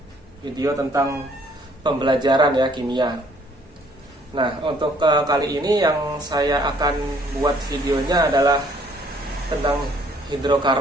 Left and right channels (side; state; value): both; normal; correlation 0.62